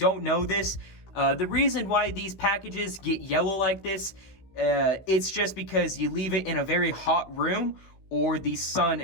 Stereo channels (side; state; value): right; late; 16 ms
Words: know this, the reason why these packages get yellow like this, it's just because you leave it in a very hot room or the sun